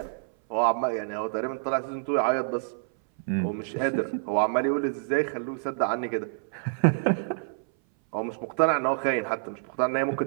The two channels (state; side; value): silent; left; 58 dB below the other